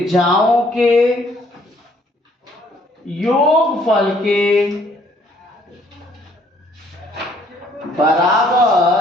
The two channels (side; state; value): both; normal; correlation 0.63